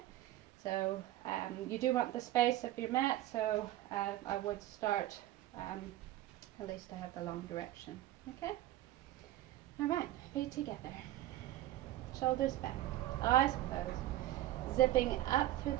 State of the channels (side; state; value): left; quieter; 14.7 dB